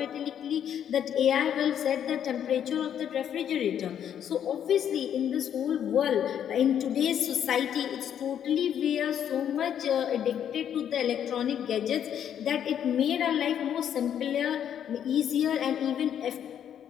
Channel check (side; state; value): right; quieter; 9.4 dB